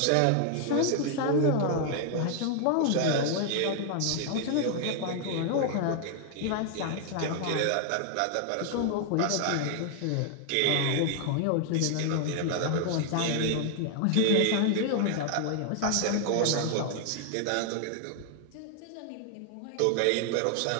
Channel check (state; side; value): different; both; correlation 0.00